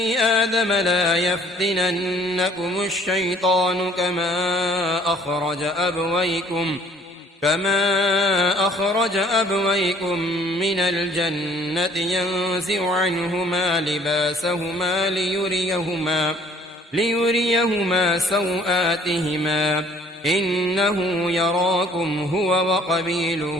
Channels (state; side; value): normal; both; correlation 0.57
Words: آدم لا يفتننكم الشيطان كما أخرج أبويكم من الجنة ينزع عنهما لباسهما ليريهما سوآتهما إنه يراكم هو